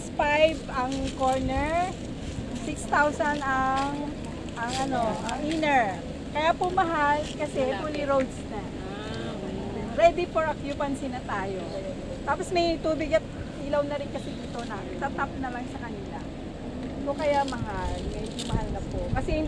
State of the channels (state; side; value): identical; both; correlation 1.00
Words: ang corner. 6,000 ang inner. Kaya po mahal kasi fully roads na. Ready for occupancy na tayo. Tapos may tubig at ilaw na rin kasi dito na. Tatap na lang sa kanila. So kaya mahal. Medyo mahal na po. Kasi